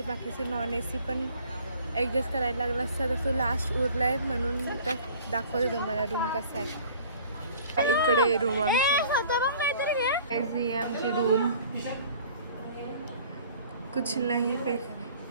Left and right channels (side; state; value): both; inverted; correlation -0.50